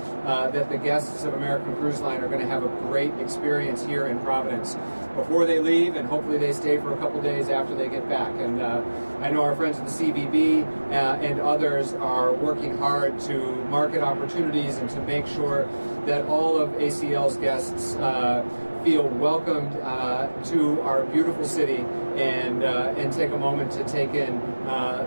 that the guests of American Cruise Line are going to have a great experience here in Providence before they leave, and hopefully they stay for a couple days after they get back. And I know our friends at the CVB and others are working hard to market opportunities and to make sure that all of ACL's guests feel welcomed to our beautiful city and take a moment to take in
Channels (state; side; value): inverted; both; correlation -1.00